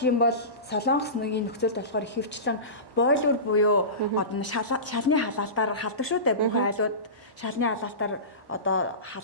юм бол Солонгос нэг нөхцөлд болохоор ихэвчлэн бойлер буюу одоо шалны халаалтаар халдаг шүү дээ. Бүх айлууд шалны халаалтаар одоо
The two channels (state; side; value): late; left; 1.1 ms